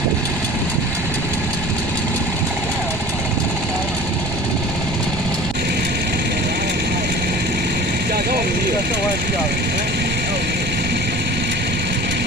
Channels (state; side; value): noise; right; rumble, 6 dB below the sound